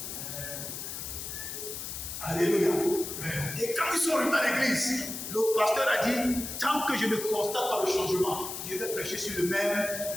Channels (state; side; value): noise; left; hiss, 7 dB below the sound